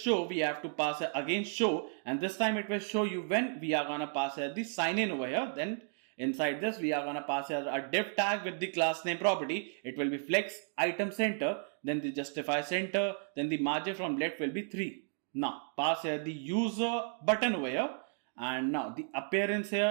we have to pass here again show, and this time it will show you when we are gonna pass here the sign in over here. Then inside this, we are gonna pass here a div tag with the class name property. It will be flex item center, then the justify center, then the margin from left will be 3. Now pass here the user button over here, and now the appearance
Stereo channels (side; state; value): left; silent; 55 dB below the other